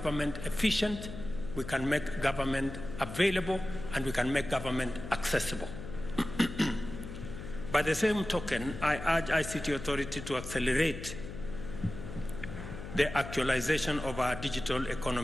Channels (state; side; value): noise; left; hum, 10 dB below the sound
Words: efficient, we can make government available, and we can make government accessible. By the same token, I urge ICT Authority to accelerate the actualization of our digital